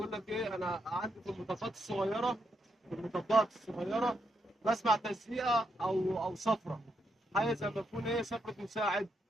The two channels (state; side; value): normal; both; correlation 0.80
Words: لك ايه، انا عندي في المطبات الصغيرة بسمع تزييقة او صفرة، حاجة زي ما تكون ايه صفرة مساعد،